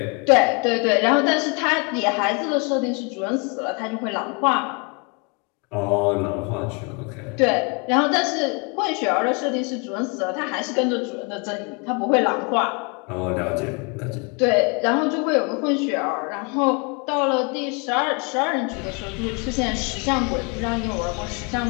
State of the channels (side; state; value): right; quieter; 32.4 dB